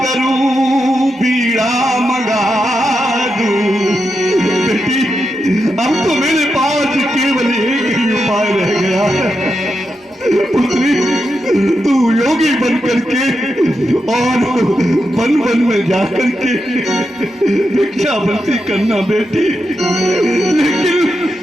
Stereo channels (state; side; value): normal; both; correlation 0.86